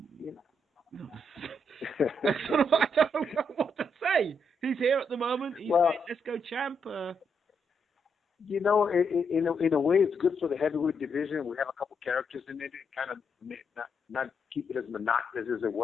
know what to say. He's here at the moment. He's Let's Go champ. In a way, it's good for the heavyweight division. We have a couple characters in it, kind of not keep it as monotonous as it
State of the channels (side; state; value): both; normal; correlation 0.78